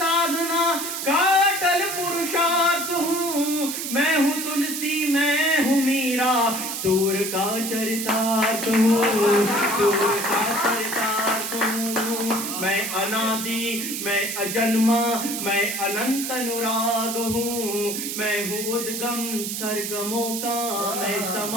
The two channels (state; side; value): noise; right; hiss, 4 dB below the sound